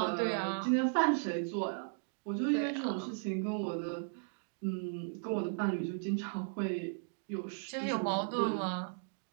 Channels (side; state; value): left; silent; digital silence